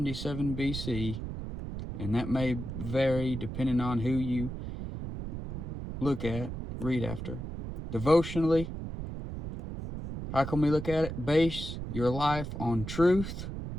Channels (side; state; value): right; noise; rumble, 7 dB below the sound